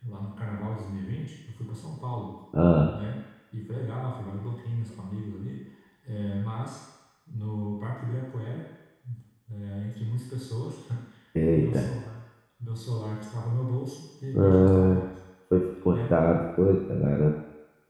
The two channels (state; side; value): identical; both; correlation 1.00